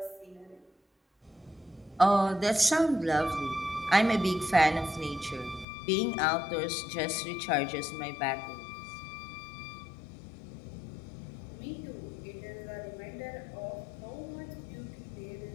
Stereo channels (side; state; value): right; drops out; at 5.7 s